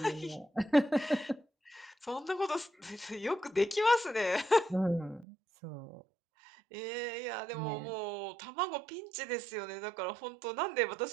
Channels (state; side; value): drops out; left; at 5.2 s